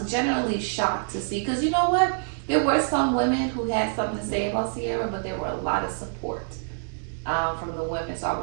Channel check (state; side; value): silent; left; digital silence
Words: generally shocked to see, because you know what? There were some women who had something to say about Sierra, but there were a lot of support from the women. So I